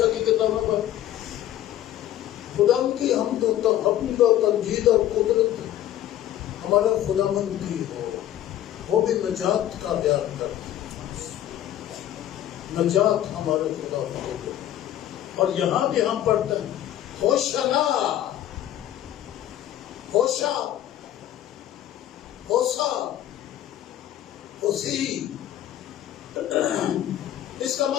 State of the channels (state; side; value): quieter; right; 12.3 dB